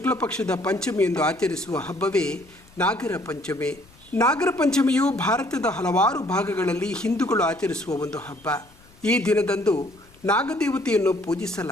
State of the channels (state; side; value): noise; left; rumble, 27 dB below the sound